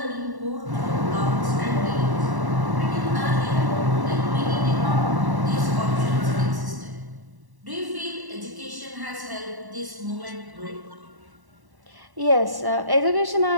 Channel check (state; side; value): late; left; 1.1 ms